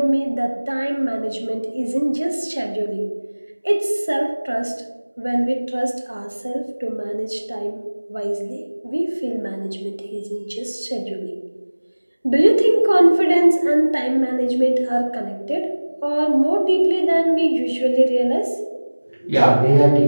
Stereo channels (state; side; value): inverted; both; correlation -1.00